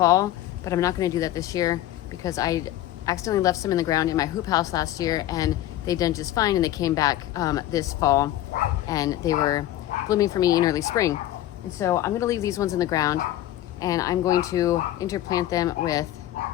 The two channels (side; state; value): right; quieter; 13.7 dB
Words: but I'm not going to do that this year because I accidentally left some in the ground in my hoop house last year, and they done just fine, and they came back this fall, and they were blooming for me in early spring. And so I'm going to leave these ones in the ground, and I'm going to interplant them